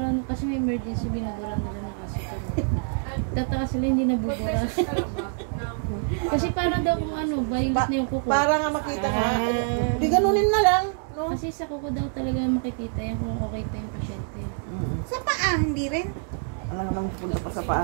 kasi may emergency, binuburan nila na kasi. Tataka sila hindi nabubura. Kasi para daw kung ano, violet na yung kuko. Para nga makita nga. Di ganunin na lang. No? Kasi sa kuko daw talaga makikita yan kung okay pa yung pasyente. Sa paa, hindi rin. Alam nga nang punta pa sa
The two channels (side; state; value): left; silent; 61 dB below the other